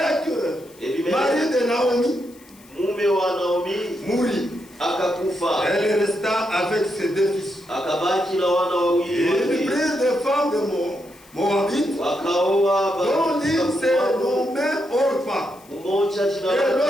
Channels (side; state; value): left; noise; hiss, 26 dB below the sound